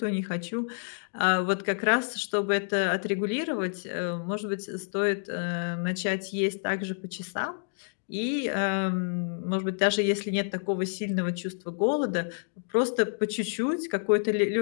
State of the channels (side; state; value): right; silent; digital silence